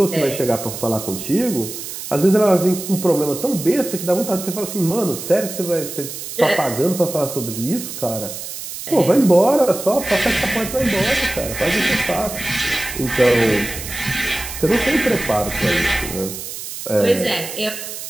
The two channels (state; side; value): noise; right; hiss, 9 dB below the sound